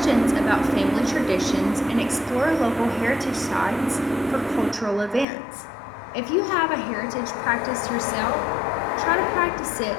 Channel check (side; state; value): right; drops out; at 5.2 s